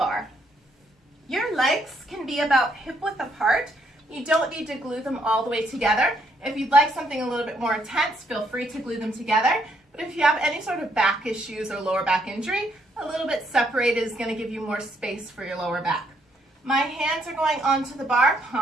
Your legs can be about hip width apart. You don't need to glue them all the way together. If you'd like something a little bit more intense, feel free to glue them together. But if you have any sort of back issues or lower back injury, a little bit separated is going to give you more space for your lower back. My hands are going onto the bar,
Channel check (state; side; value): normal; both; correlation 0.72